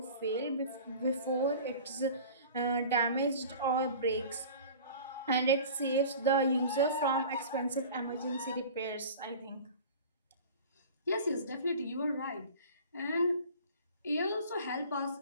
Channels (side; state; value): both; inverted; correlation -0.41